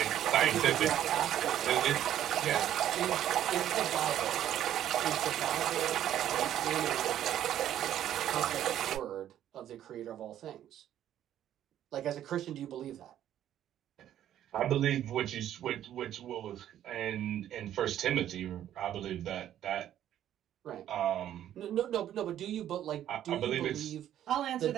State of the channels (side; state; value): left; quieter; 11.3 dB